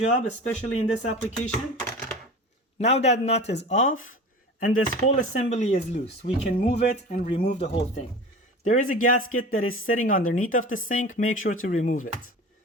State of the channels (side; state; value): both; normal; correlation 0.35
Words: especially in this application. Now that nut is off and this whole assembly is loose, we can move it and remove the whole thing. There is a gasket that is sitting underneath of the sink. Make sure to remove it.